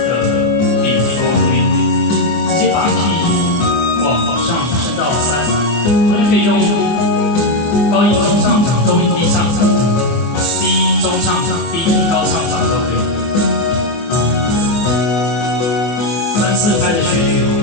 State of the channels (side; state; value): right; late; 25 ms